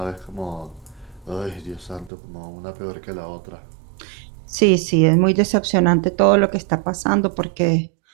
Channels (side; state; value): left; drops out; at 2.1 s